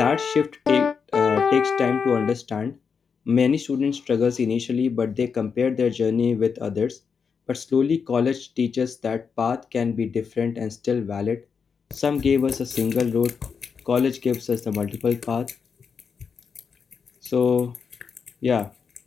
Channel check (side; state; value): right; quieter; 6.0 dB